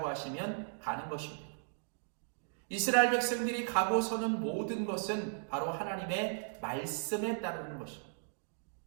하시면 가는 것입니다. 이스라엘 백성들이 가고 서는 모든 것은 바로 하나님의 말씀에 따르는 것입니다.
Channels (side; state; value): left; silent; digital silence